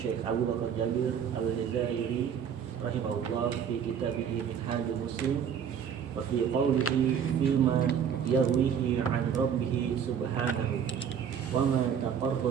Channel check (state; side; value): quieter; left; 7.8 dB